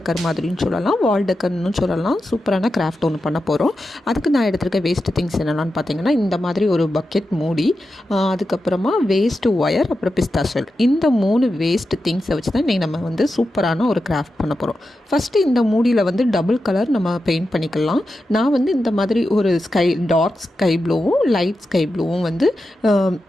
மாதிரின்னு சொல்லலாம், வால் டெக்கர்னு சொல்லலாம், சூப்பரான கிராஃப்ட் ஒன்று பண்ண போகிறோம். அதுக்கு நான் எடுத்துருக்க வேஸ்ட் திங்ஸ் என்னென்னு பார்த்தீங்கன்னா, இந்த மாதிரி ஒரு பக்கெட் மூடி, அதுக்கப்புறமா வேஸ்ட்டு ஒயர், அப்புறம் பிஸ்தா ஷெல். இந்த 3 வேஸ்ட் திங்ஸை வச்சு தான் இன்றைக்கி நம்ம வந்து சூப்பரான ஒரு கிராஃப்ட் பண்ண போகிறோம். ஃபஸ்ட்டு இந்த மூடியில் வந்து டபுள் கலர் நம்ம பெயிண்ட் பண்ணிக்கலாம். நான் வந்து இந்த மாதிரி ஒரு டார்க் ஸ்கை ப்ளூவும் லைட் ஸ்கை ப்ளூவும் வந்து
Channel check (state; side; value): normal; both; correlation 0.90